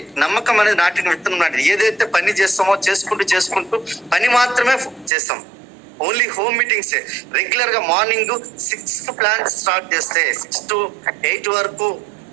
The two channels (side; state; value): left; drops out; at 5.1 s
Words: నమ్మకం అనేది నాటిన విత్తనం నాటిది. ఏదైతే పని చేస్తామో చేసుకుంటూ పని మాత్రమే చేస్తాం. ఓన్లీ హోమ్ మీటింగ్స్ రెగ్యులర్ గా మార్నింగ్ 6 ప్లాన్ స్టార్ట్ చేస్తే 6 to 8 వరకు